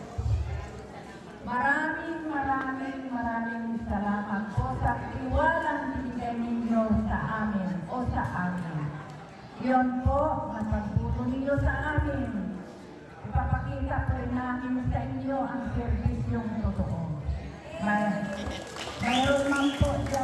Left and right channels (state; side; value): identical; both; correlation 1.00